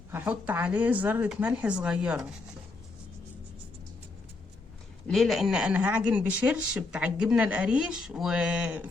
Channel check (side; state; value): right; quieter; 3.5 dB